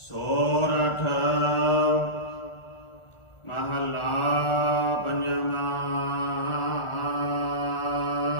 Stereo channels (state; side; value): late; right; 1.4 ms